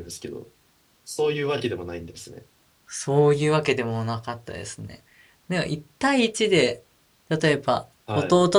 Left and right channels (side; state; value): both; identical; correlation 1.00